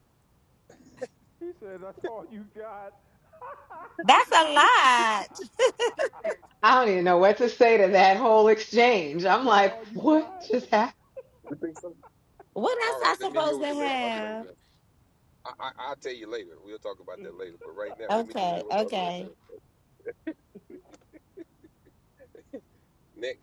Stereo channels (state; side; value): identical; both; correlation 1.00